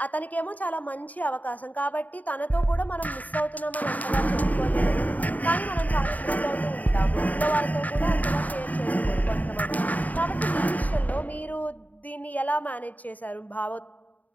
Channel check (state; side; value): late; right; 0.076 ms